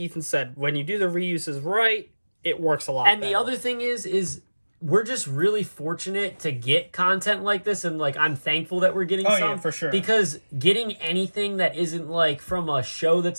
Ethan said, when you do the reuses right, it works a lot better. The other thing is we're just really fortunate to get content like this, and like I'm thankful that we're getting some. Yeah, for sure. Because getting anything that isn't like from a show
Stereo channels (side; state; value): both; inverted; correlation -1.00